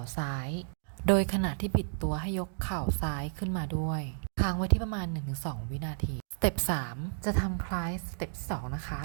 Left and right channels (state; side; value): silent; left; digital silence